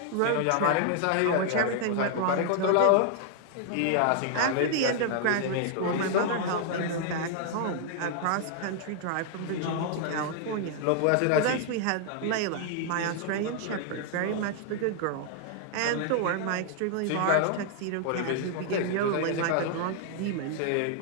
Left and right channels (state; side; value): different; both; correlation 0.00